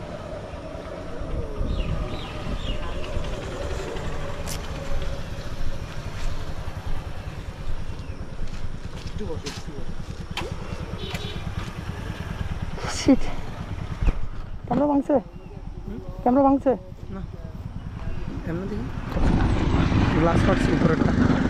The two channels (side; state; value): both; identical; correlation 1.00